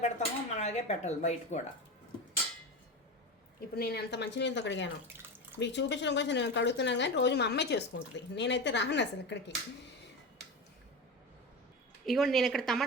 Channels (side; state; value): both; normal; correlation 0.23